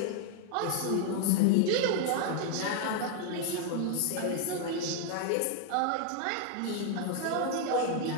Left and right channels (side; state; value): both; different; correlation 0.00